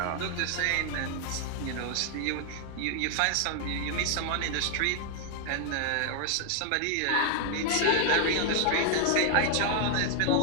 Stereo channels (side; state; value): both; different; correlation 0.00